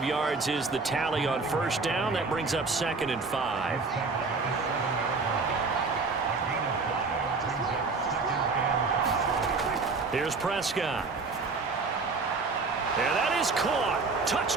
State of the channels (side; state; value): left; quieter; 4.2 dB